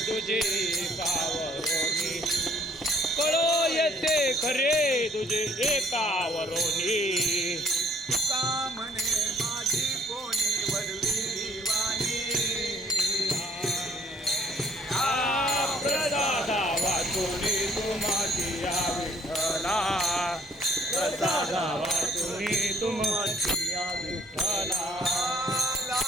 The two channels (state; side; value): normal; both; correlation 0.62